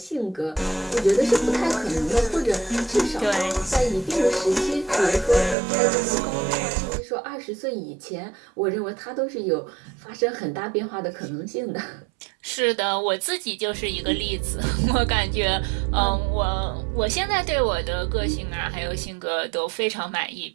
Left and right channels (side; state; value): left; drops out; at 5.6 s